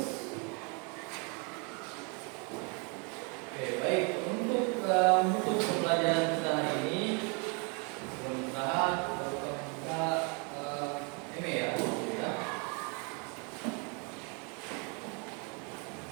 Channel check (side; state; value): left; quieter; 34.3 dB